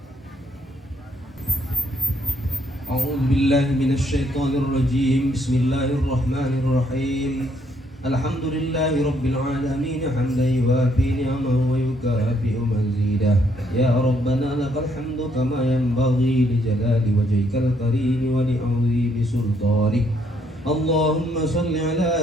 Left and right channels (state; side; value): normal; both; correlation 0.71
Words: A'udzu billahi minasy syaithanir rajim. Bismillahirrahmanirrahim. Alhamdulillahi rabbil alamin hamdan yuwafi ni'amahu wa yukafi'u mazidah. Ya Rabbana lakal hamdu kama yanbaghi li jalali wajhikal karim wa li 'azimi sultanik. Allahumma shalli